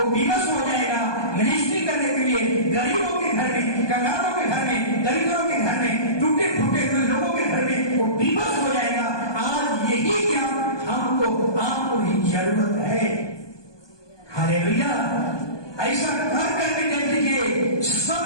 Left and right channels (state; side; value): late; right; 1.2 ms